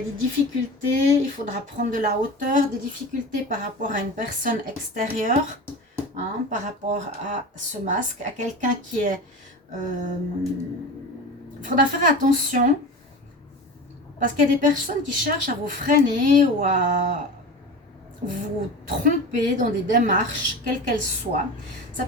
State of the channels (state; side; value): normal; both; correlation 0.31